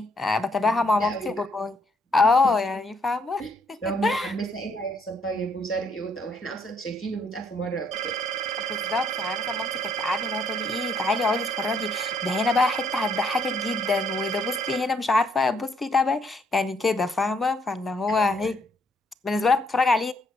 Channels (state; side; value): normal; both; correlation 0.69